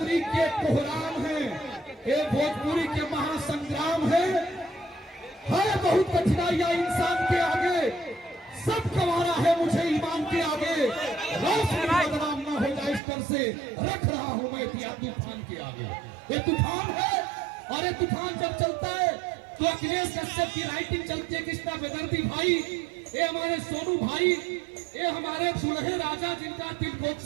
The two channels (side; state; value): left; drops out; at 13.0 s